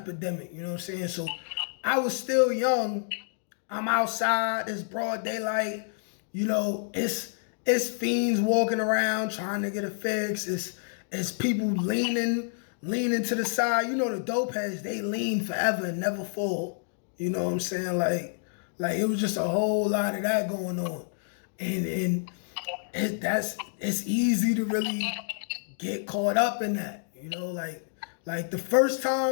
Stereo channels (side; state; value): right; silent; digital silence